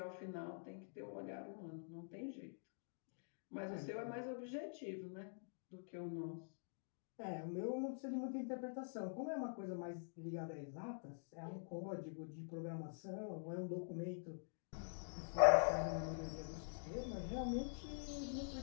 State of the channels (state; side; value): silent; right; digital silence